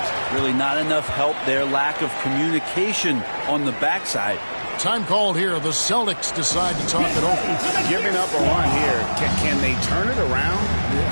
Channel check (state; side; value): inverted; both; correlation -1.00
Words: Really not enough help there. Lack of communication on the backside. Time called here. The Celtics decide to talk it over. Giving up a run here. Can they turn it around?